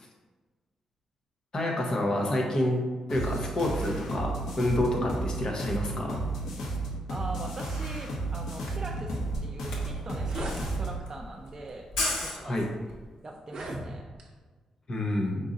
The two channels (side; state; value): both; normal; correlation 0.75